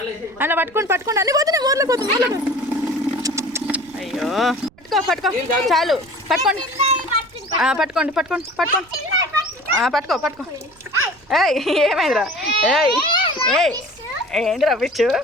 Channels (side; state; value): right; noise; rumble, 29 dB below the sound